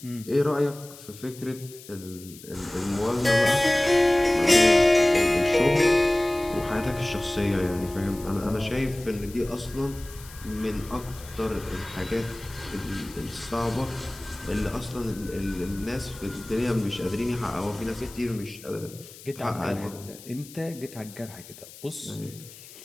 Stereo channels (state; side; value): noise; left; hiss, 18 dB below the sound